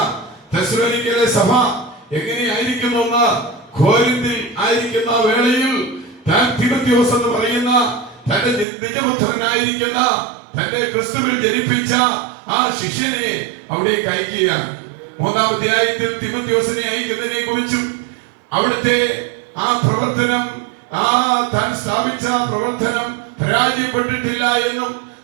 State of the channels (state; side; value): drops out; left; at 8.7 s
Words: തെസ്സലോനിക്കയിലെ സഭ എങ്ങനെയായിരിക്കുന്നു എന്ന് കോരിന്തിൽ ആയിരിക്കുന്ന വേളയിൽ താൻ തിമോഥെയോസ് എന്ന് പറയുന്ന തന്റെ നിജപുത്രനായിരിക്കുന്ന തന്റെ ക്രിസ്തുവിൽ ജനിപ്പിച്ച ആ ശിഷ്യനെ അവിടേക്ക് അയക്കുകയാണ്. 3-ാം അധ്യായത്തിൽ തിമോഥെയോസിനെ അയക്കുന്നതിനെ കുറിച്ചും അവിടുത്തെ ആ പ്രവർത്തനം, താൻ സ്ഥാപിച്ച പ്രവർത്തനം പരാജയപ്പെട്ടിട്ടില്ല എന്നും